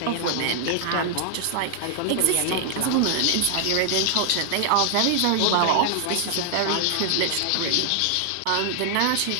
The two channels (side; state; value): both; different; correlation 0.00